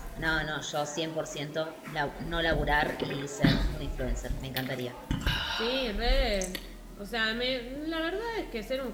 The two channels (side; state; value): both; identical; correlation 1.00